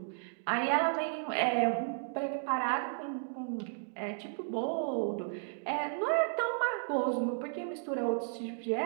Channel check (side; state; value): left; silent; digital silence